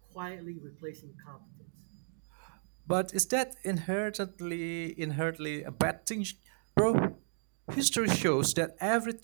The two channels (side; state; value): left; silent; digital silence